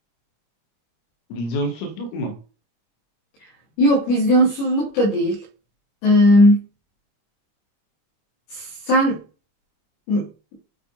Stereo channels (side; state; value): right; late; 25 ms